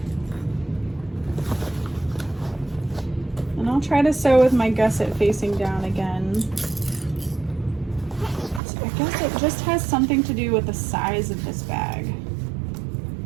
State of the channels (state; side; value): drops out; left; at 8.6 s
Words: I'll try to sew with my gusset facing down again. So I guess it just has something to do with the size of this bag.